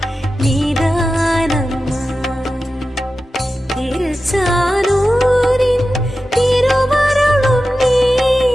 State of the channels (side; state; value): both; normal; correlation 0.93